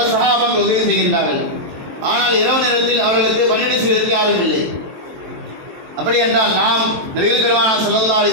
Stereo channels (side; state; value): left; late; 23 ms